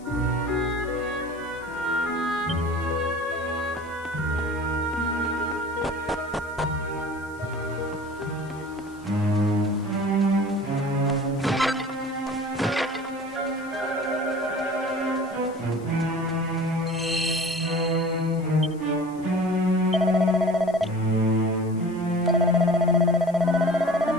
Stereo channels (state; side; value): noise; left; hiss, 26 dB below the sound